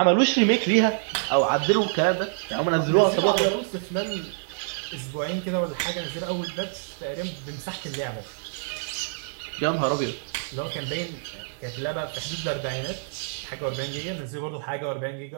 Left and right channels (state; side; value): silent; left; digital silence